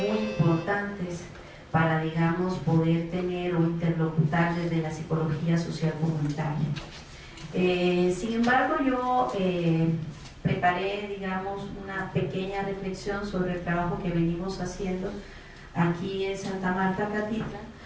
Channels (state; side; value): identical; both; correlation 1.00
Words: importantes para, digamos, poder tener o interlocutar desde la psicología social comunitaria. Sin embargo, yo preparé, digamos, una pequeña reflexión sobre el trabajo que venimos haciendo aquí en Santa Marta Catitla,